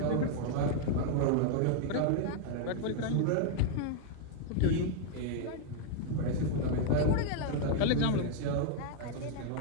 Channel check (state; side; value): different; both; correlation -0.01